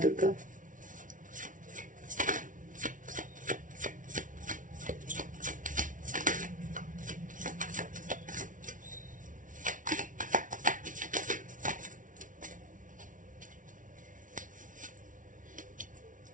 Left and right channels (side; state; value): left; late; 0.38 ms